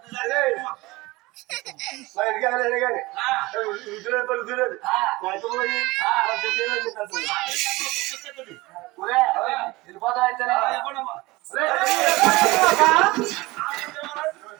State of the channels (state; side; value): quieter; left; 21.4 dB